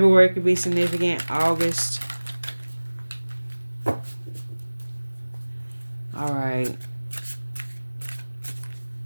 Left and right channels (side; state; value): both; inverted; correlation -1.00